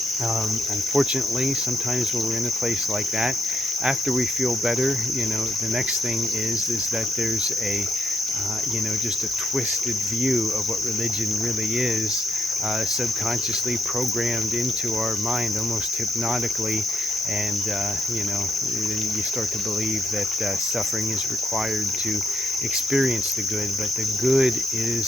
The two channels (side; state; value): both; normal; correlation 0.76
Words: Unfortunately, sometimes when we're in a place like that, after we feel better, the next thing is that there's just a twisted view of what religion really is, subconsciously programmed into our mind, almost hypnotically, and you start to believe that suffering is required to experience the good, but the good